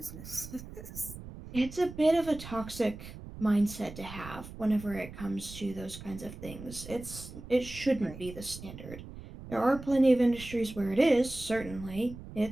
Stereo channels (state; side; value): noise; right; rumble, 13 dB below the sound